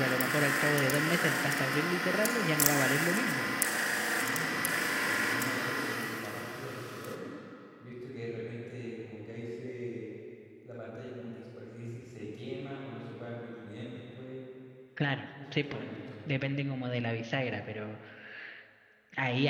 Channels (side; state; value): both; identical; correlation 1.00